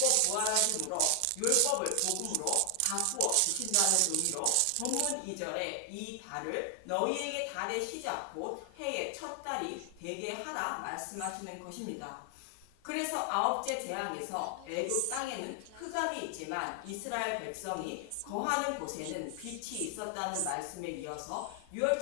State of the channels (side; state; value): both; different; correlation 0.00